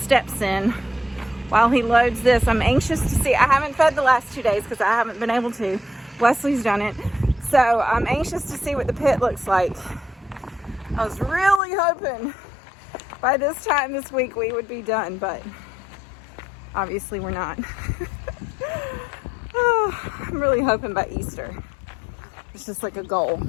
in while he loads this. I'm anxious to see. I haven't fed the last 2 days because I haven't been able to. Wesley's done it. So I'm anxious to see what the pit looks like. I was really hoping by this time this week we would be done, but obviously we're not. Oh, I'm really hoping by Easter. It's just like a goal.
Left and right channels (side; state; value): right; drops out; at 11.6 s